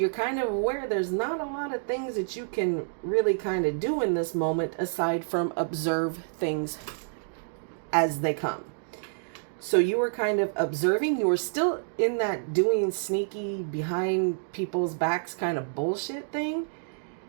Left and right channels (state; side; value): silent; left; digital silence